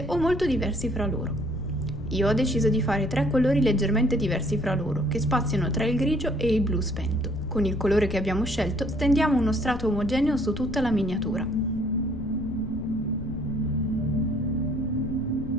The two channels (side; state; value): left; noise; rumble, 9 dB below the sound